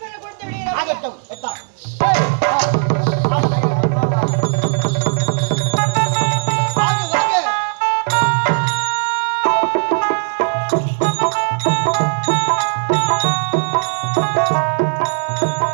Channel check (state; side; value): silent; left; 57 dB below the other